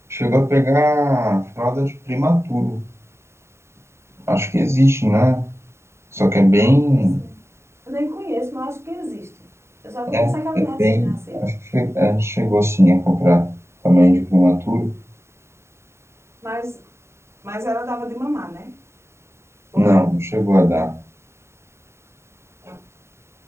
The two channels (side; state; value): left; late; 0.13 ms